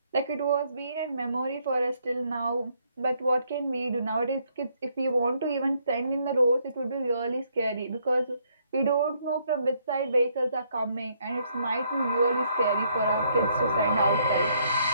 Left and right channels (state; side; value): inverted; both; correlation -0.70